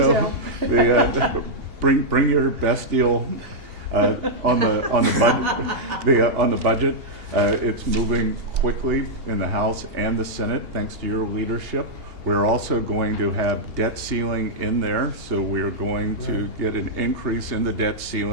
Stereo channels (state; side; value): late; left; 2.8 ms